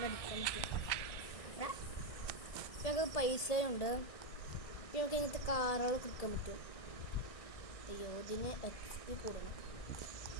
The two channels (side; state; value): right; late; 1.6 ms